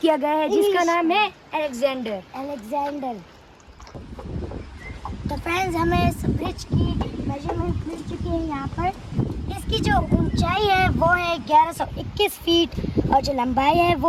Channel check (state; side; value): identical; both; correlation 1.00